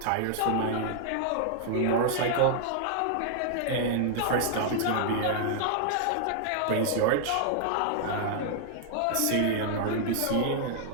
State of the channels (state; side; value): different; both; correlation -0.01